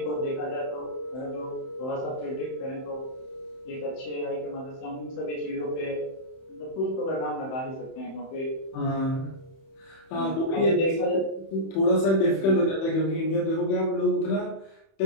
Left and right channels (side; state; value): right; late; 31 ms